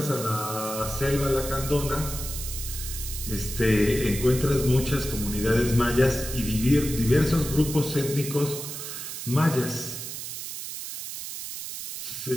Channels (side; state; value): right; noise; hiss, 8 dB below the sound